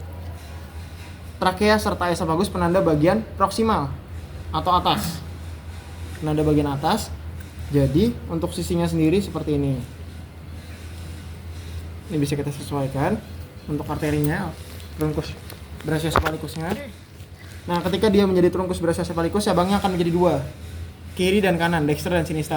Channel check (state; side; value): identical; both; correlation 1.00